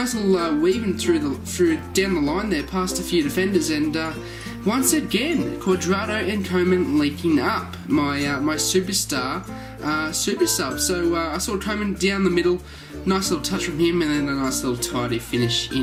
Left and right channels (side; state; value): both; identical; correlation 1.00